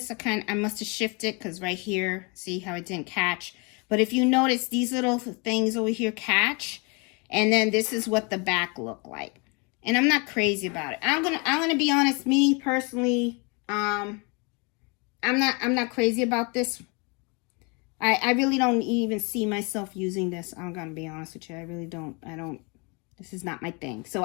I must have shifted because right here, see how it didn't catch. But if you notice, these little things over here catch. And then this is what the back looked like. And I'm not crazy about it. I'm gonna be honest, me personally, I'm not crazy about this. I really don't even see myself using this. I'm gonna be honest with you. I really don't. This is not my thing. So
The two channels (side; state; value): right; quieter; 31.2 dB